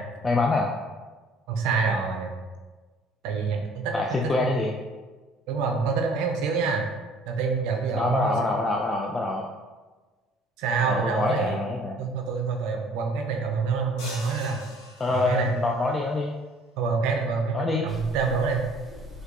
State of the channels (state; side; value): normal; both; correlation 0.55